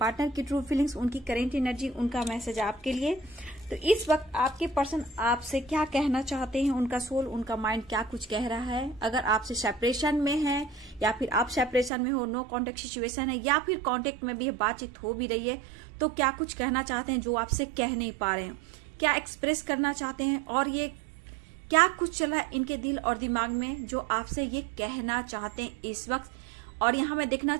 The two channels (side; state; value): left; drops out; at 11.9 s